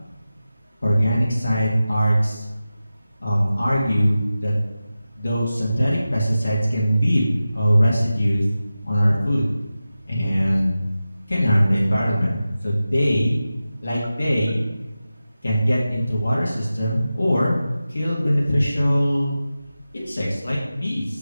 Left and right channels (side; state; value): both; inverted; correlation -0.94